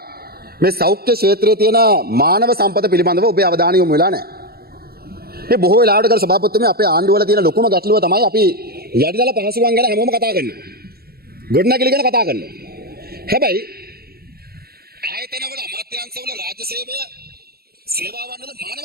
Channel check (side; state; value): left; late; 0.45 ms